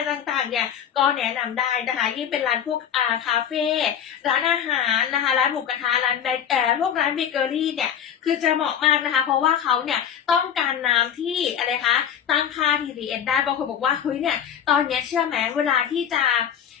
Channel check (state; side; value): quieter; right; 8.8 dB